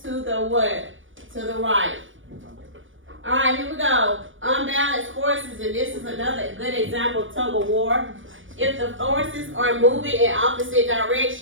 to the what? To the right. Alright, here we go. Unbalanced forces, and this is another good example of tug of war. If the forces are moving in opposite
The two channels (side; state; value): left; late; 0.57 ms